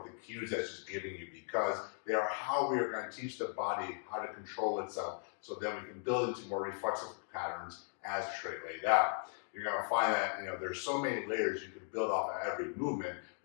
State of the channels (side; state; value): right; silent; 53 dB below the other